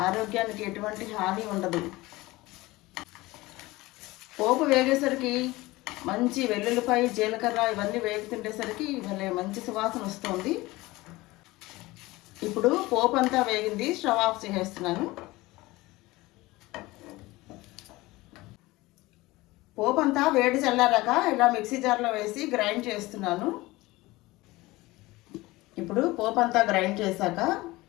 ఆరోగ్యానికి ఎటువంటి హాని ఉండదు. పోపు వేగేసరికి మంచి వెల్లుల్లిపాయ, జీలకర్ర ఇవన్నీ వేగుతుండేసరికి ఇవన్నీ మంచి సువాసన వస్తుంది. ఇప్పుడు పోపు అంతా వేగింది, స్టవ్ ఆఫ్ చేసేస్తున్నాను. పోపు అంతా వేడి చల్లారాక ఇలా మిక్సీ జార్లో వేసి గ్రైండ్ చేస్తున్నాను. ఇప్పుడు పోపు అంతా గ్రైండ్ చేశాక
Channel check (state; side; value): quieter; right; 20.2 dB